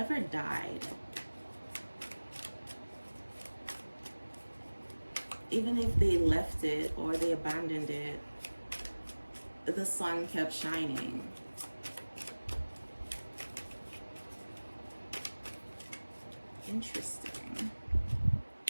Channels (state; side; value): inverted; both; correlation -1.00